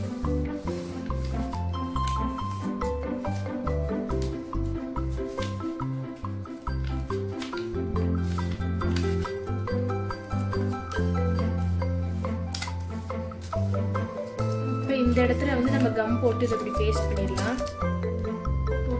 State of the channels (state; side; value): identical; both; correlation 1.00